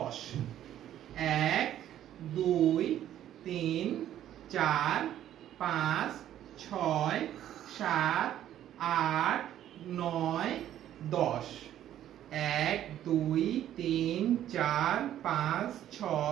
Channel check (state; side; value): quieter; left; 11.7 dB